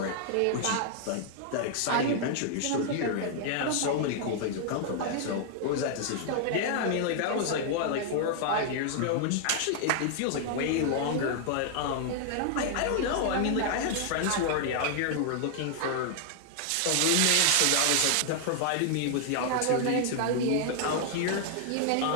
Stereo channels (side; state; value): both; different; correlation -0.01